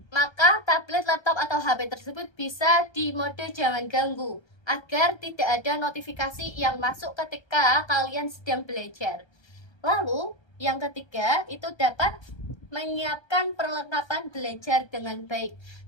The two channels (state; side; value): late; right; 1.3 ms